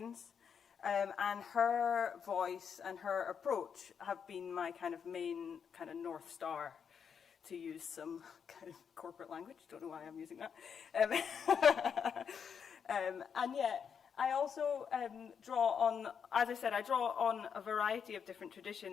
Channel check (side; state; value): right; quieter; 7.0 dB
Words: and her voice and her approach have been my kind of main kind of North Star, to use some kind of corporate language. Don't know why I'm using that. And yet, I also draw on, as I said, I draw on a variety of different